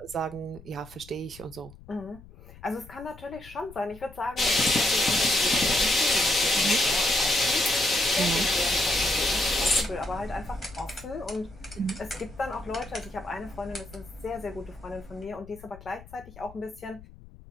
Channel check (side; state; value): left; noise; rumble, 20 dB below the sound